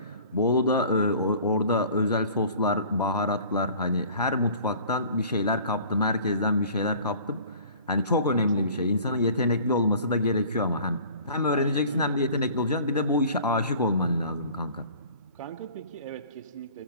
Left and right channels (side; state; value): both; inverted; correlation -0.47